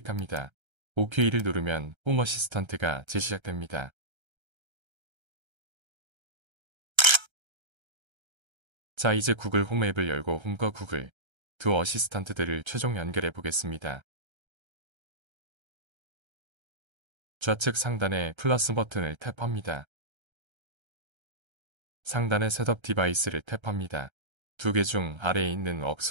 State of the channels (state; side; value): late; left; 1.3 ms